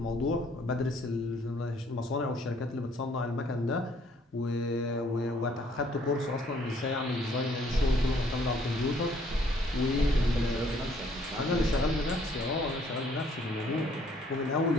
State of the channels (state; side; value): normal; both; correlation 0.63